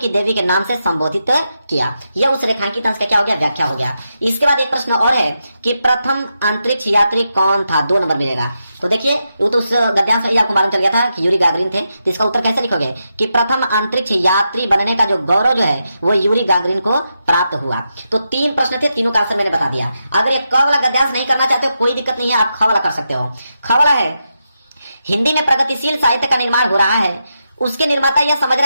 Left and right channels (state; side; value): inverted; both; correlation -0.86